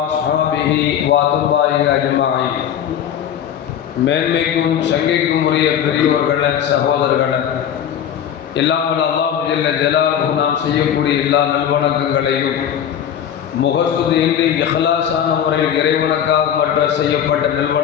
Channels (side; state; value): right; quieter; 9.4 dB